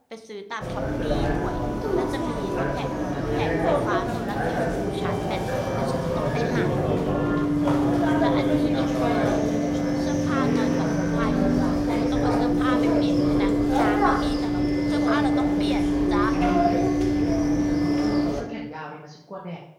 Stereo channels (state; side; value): identical; both; correlation 1.00